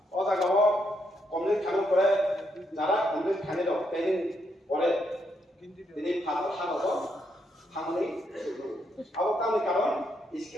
ও জায়গাও কমপ্লিট খানোর পরে যারা কমপ্লিট খানি দো ট্রেনিং পরে তিনি ফাদার হানো থামনি আবো কামনি কারণ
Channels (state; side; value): normal; both; correlation 0.77